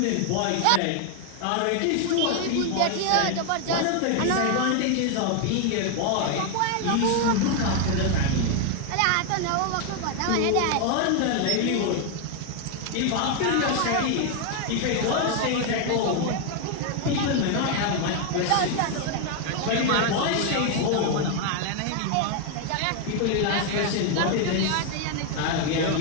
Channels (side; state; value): both; different; correlation 0.01